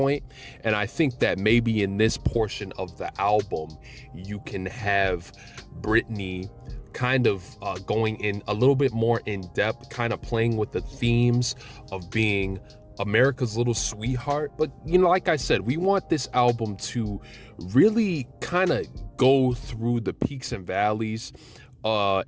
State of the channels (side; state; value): both; identical; correlation 1.00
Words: And I think that maybe in this portion of the album, you can have Britney kind of going in a little bit more in depth, kind of playing with the themes of being America's little sweetheart. But like I said, we want this album to really kind of go through the peaks and valleys,